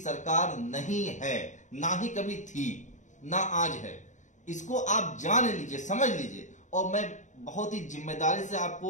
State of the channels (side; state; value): right; late; 0.35 ms